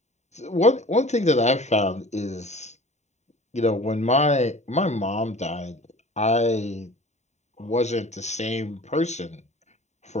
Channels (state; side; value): late; right; 0.33 ms